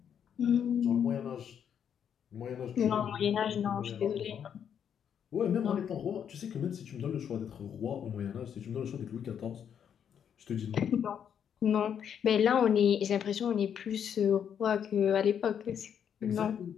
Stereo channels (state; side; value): quieter; right; 8.4 dB